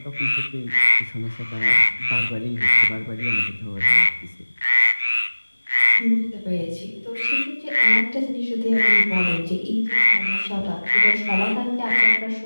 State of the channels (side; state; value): both; inverted; correlation -1.00